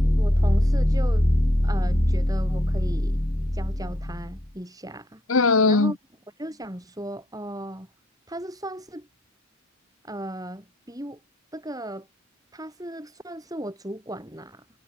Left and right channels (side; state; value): both; normal; correlation 0.72